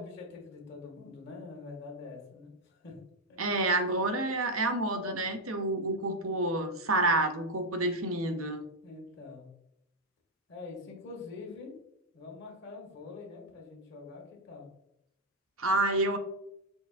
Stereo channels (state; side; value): normal; both; correlation 0.02